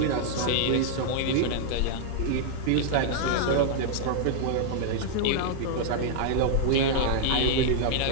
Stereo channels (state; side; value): different; both; correlation -0.01